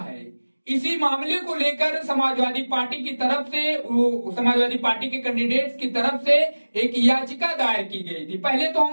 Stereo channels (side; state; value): both; inverted; correlation -1.00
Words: इसी मामले को लेकर समाजवादी पार्टी की तरफ से, समाजवादी पार्टी के कैंडिडेट्स की तरफ से एक याचिका दायर की गई थी। पहले तो